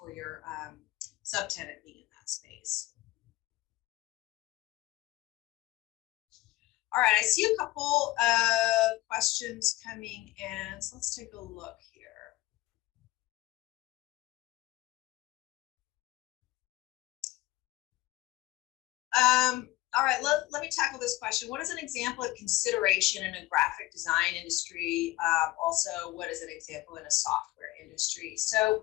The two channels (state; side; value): quieter; right; 18.2 dB